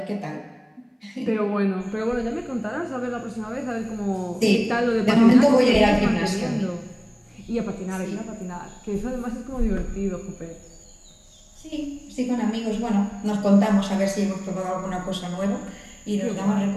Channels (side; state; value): both; identical; correlation 1.00